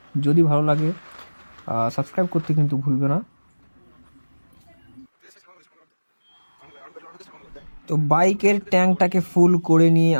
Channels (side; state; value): both; inverted; correlation -1.00